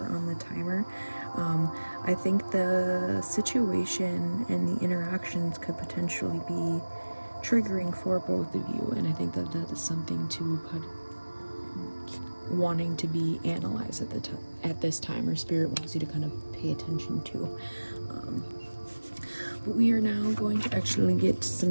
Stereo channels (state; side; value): inverted; both; correlation -1.00